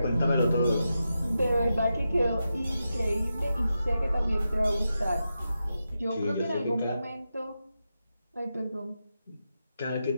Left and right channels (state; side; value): inverted; both; correlation -0.89